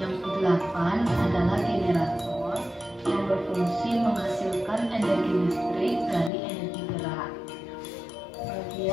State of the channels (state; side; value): drops out; right; at 6.3 s